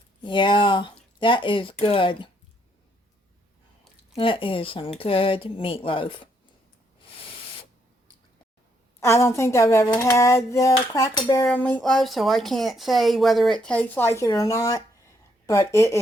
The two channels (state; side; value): normal; both; correlation 0.73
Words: Yeah, that is good. That is some good meatloaf. I don't think I've ever had the Cracker Barrel meatloaf, so I can't say whether it tastes like it or not, but it